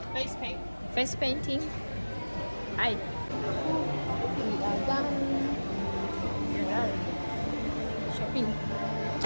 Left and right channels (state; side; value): inverted; both; correlation -1.00